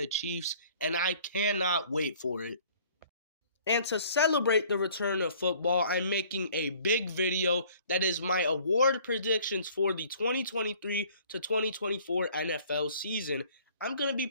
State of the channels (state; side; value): inverted; both; correlation -0.55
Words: Chiefs, and I cannot wait for it. And to celebrate the return of football, I'm making a big video that is my award predictions for the 2023 to 2024 NFL season. I'm going to be